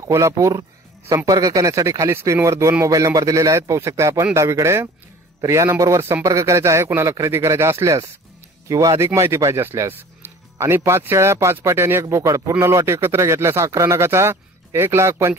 संपर्क करण्यासाठी खाली स्क्रीनवर 2 मोबाईल नंबर दिलेले आहेत, पाहू शकता आपण डावीकडे. तर या नंबरवर संपर्क करायचा आहे कुणाला खरेदी करायचा असल्यास किंवा अधिक माहिती पाहिजे असल्यास. आणि 5 शेळ्या 5 पाटी आणि 1 बोकड पूर्ण लॉट एकत्र घेतल्यास 11 नगाचा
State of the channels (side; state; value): both; normal; correlation 0.45